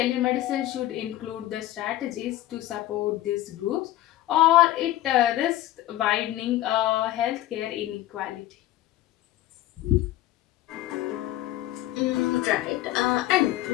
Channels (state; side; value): quieter; right; 14.9 dB